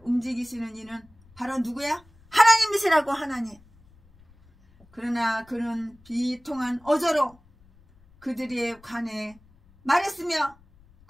움직이시는 이는 바로 누구야? 하나님이시라고. 하나님. 그러나 그는 비통한 어조로 그들에 관해 말했으며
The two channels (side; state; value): left; noise; rumble, 29 dB below the sound